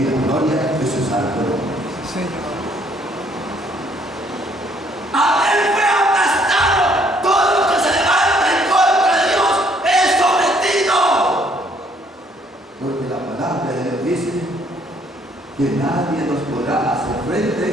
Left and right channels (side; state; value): both; normal; correlation 0.65